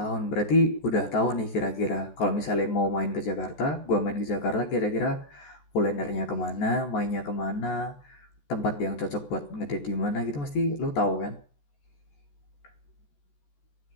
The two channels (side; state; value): right; late; 14 ms